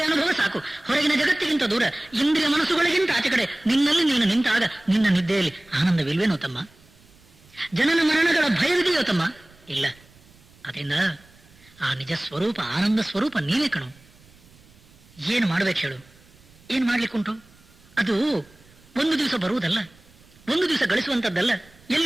ಅನುಭವ ಸಾಕು. ಹೊರಗಿನ ಜಗತ್ತಿಗಿಂತ ದೂರ, ಇಂದ್ರಿಯ ಮನಸ್ಸುಗಳಿಗಿಂತ ಆಚೆ ಕಡೆ ನಿನ್ನಲ್ಲಿ ನೀನು ನಿಂತಾಗ ನಿನ್ನ ನಿದ್ದೆಯಲ್ಲಿ ಆನಂದವಿಲ್ವೇನೋ ತಮ್ಮ? ಜನನ ಮರಣಗಳ ಭಯವಿದೆಯೋ ತಮ್ಮ? ಇಲ್ಲ. ಅದರಿಂದ ಆ ನಿಜ ಸ್ವರೂಪ ಆನಂದ ಸ್ವರೂಪ ನೀವೇ ಕಣು. ಏನು ಮಾಡ್ಬೇಕು ಹೇಳು? ಏನು ಮಾಡ್ಲಿಕ್ಕುಂಟು? ಅದು ಒಂದು ದಿವಸ ಬರುವುದಲ್ಲ, ಒಂದು ದಿವಸ ಗಳಿಸುವಂಥದ್ದಲ್ಲ,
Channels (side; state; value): right; noise; rumble, 27 dB below the sound